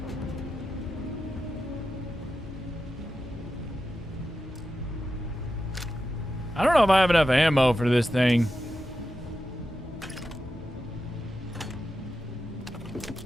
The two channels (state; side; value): normal; both; correlation 0.90